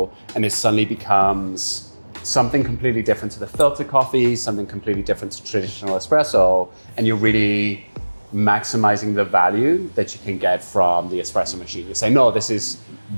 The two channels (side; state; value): both; inverted; correlation -1.00